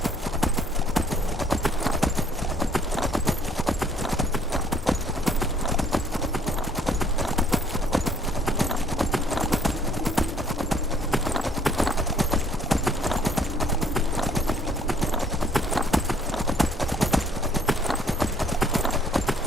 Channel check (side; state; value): both; normal; correlation 0.61